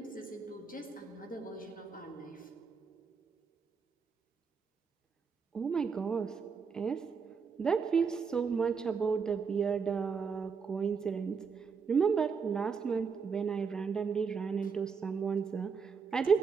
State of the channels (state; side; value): quieter; left; 5.7 dB